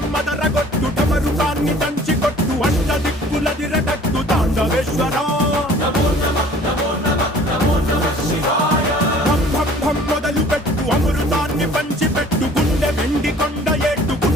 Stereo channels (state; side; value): normal; both; correlation 0.51